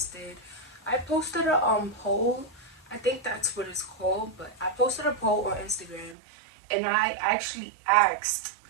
I posted a poll. I think that's what it's called, but I posted a poll on Instagram, and I actually asked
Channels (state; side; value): drops out; left; at 6.2 s